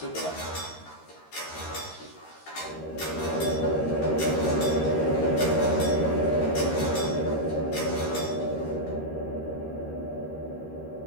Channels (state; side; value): late; right; 13 ms